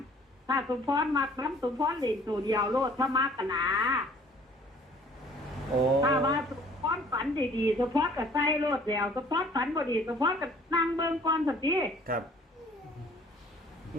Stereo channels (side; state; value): both; normal; correlation 0.54